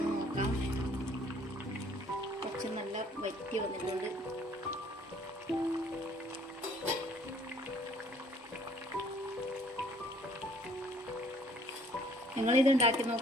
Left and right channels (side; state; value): both; normal; correlation 0.58